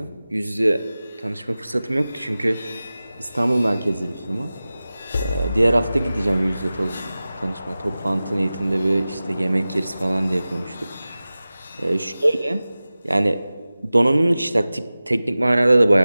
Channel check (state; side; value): inverted; both; correlation -0.97